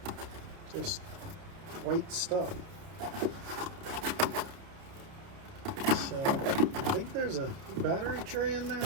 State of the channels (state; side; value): late; left; 30 ms